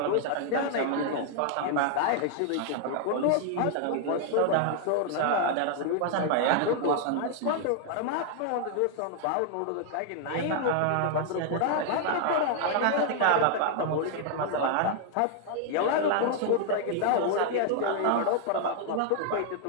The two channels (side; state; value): both; different; correlation 0.00